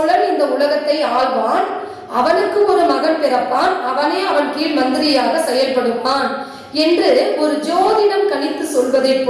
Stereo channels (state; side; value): identical; both; correlation 1.00